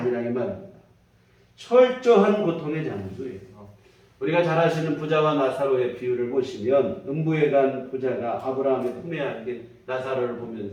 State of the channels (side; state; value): both; identical; correlation 1.00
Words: 이 말입니다. 철저한 고통의 장소예요. 우리가 잘 아시는 부자와 나사로의 비유를 보시면 음부에 간 부자가 아브라함의 품에 안긴 나사로를